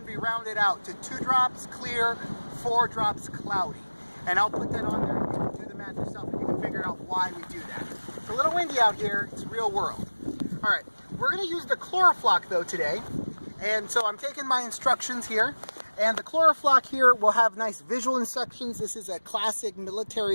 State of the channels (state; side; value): inverted; both; correlation -1.00